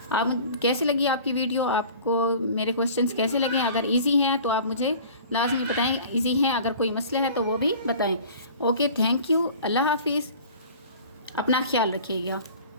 आप कैसे लगी आपकी वीडियो, आपको मेरे क्वेश्चंस कैसे लगे, अगर इजी हैं तो आप मुझे लाजमी बताएं, इजी हैं, अगर कोई मसले है तो वो भी बताएं। ओके, थैंक यू, अल्लाह हाफिज़, अपना ख्याल रखिएगा,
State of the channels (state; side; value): inverted; both; correlation -0.44